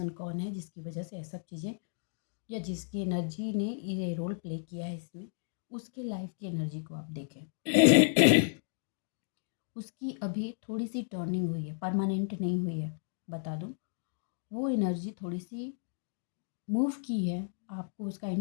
कौन है जिसकी वजह से ये सब चीज़ें, या जिसकी एनर्जी ने ये रोल प्ले किया है इसमें, उसके लाइफ की एनर्जी को आप देखें। उसकी अभी थोड़ी सी टर्निंग हुई है, परमानेंट नहीं हुई है, बता दूं। वो एनर्जी थोड़ी सी मूव की है, आपको उसका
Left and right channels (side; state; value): right; silent; digital silence